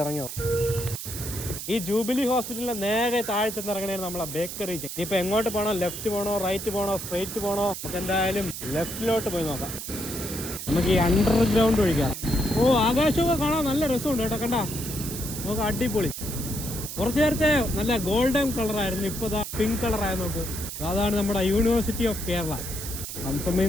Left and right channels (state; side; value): noise; right; hiss, 7 dB below the sound